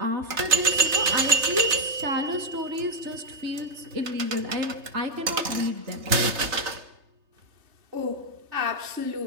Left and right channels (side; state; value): left; late; 3.3 ms